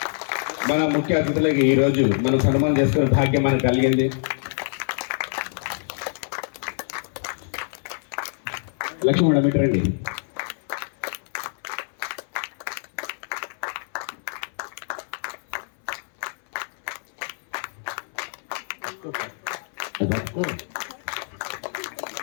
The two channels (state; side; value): silent; right; 59 dB below the other